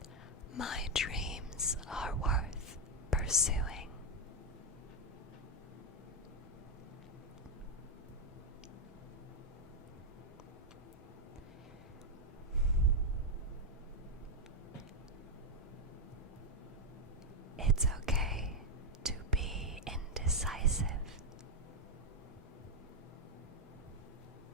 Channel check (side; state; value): both; normal; correlation 0.04